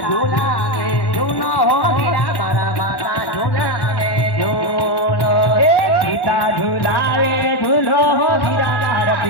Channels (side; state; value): right; late; 1.1 ms